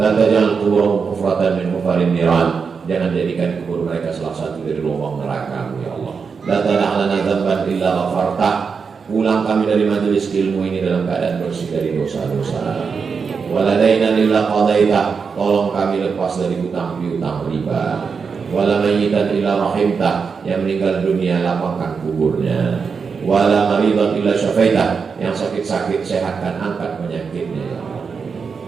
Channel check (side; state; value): left; quieter; 5.6 dB